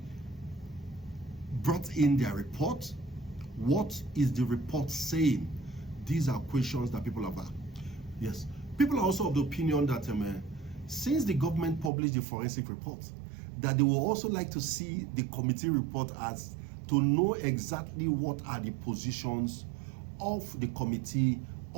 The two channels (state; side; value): drops out; left; at 11.9 s